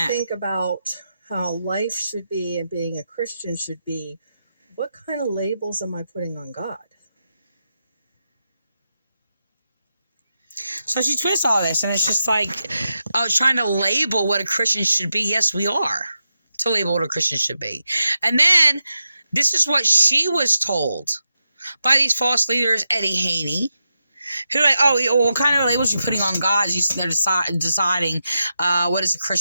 think about how life should be and being a Christian should be, what kind of labels am I putting on God? So she twists all this, and it's just like trying to label what a Christian should be. Yes, we are to label what a Christian should be. And then this is what she was told by these false leaders, Eddie Haney, who like, what kind of labels you putting on God? They're deciding what is a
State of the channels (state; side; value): inverted; both; correlation -0.87